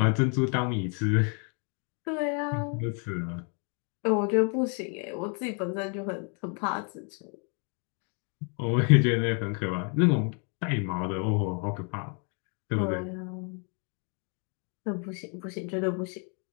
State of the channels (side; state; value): right; quieter; 39.1 dB